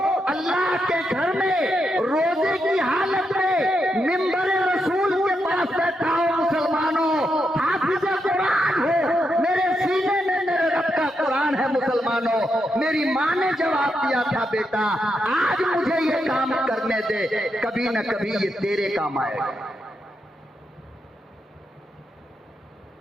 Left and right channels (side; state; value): both; normal; correlation 0.83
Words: अल्लाह के घर में रोजे की हालत में मिंबर रसूल के पास बैठा हो मुसलमानों, हाफिज़े कुरान हो, मेरे सीने में मेरे रब का कुरान है मुसलमानों। मेरी माँ ने जवाब दिया था, बेटा आज मुझे ये काम करने दे, कभी न कभी ये तेरे काम आएगा।